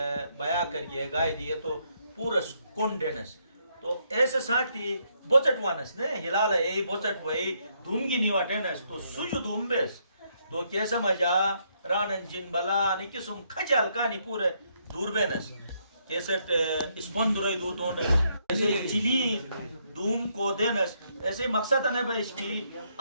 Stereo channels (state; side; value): inverted; both; correlation -0.74